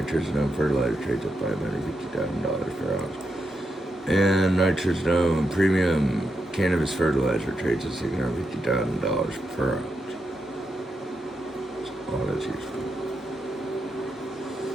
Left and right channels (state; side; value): normal; both; correlation 0.85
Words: fertilizer trades at $550,000 per ounce. And nitrogen premium cannabis fertilizer trades at $650,000 per ounce. All that's useful.